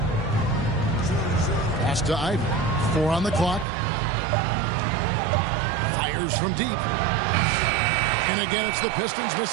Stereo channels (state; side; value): drops out; left; at 3.7 s